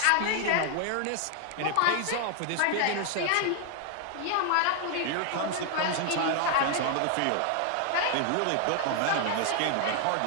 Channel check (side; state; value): both; different; correlation 0.00